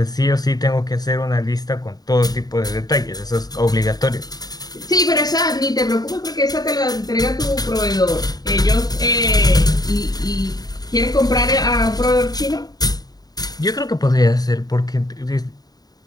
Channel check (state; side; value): late; right; 0.19 ms